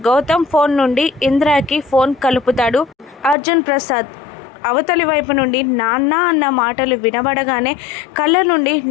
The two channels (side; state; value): right; drops out; at 3.4 s